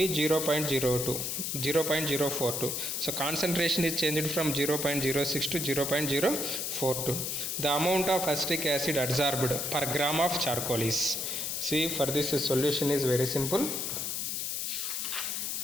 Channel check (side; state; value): left; noise; hiss, 2 dB below the sound